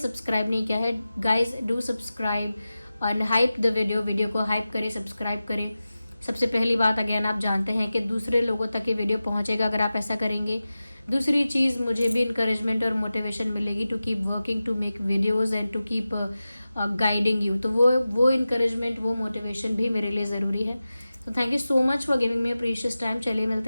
नहीं किया है। Guys do subscribe and hype the video को हाइप करें, सब्सक्राइब करें। सबसे पहली बात, अगेन आप जानते हैं कि दूसरे लोगों तक ये वीडियो पहुंचेगा अगर आप ऐसा करेंगे। दूसरी चीज़, मुझे भी इंकरेजमेंट और मोटिवेशन मिलेगी to keep working, to make videos and to keep guiding you. तो वो इंकरेजमेंट, वो मोटिवेशन भी मेरे लिए ज़रूरी है। तो thank you so much for giving me precious time. चलिए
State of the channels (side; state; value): both; inverted; correlation -0.95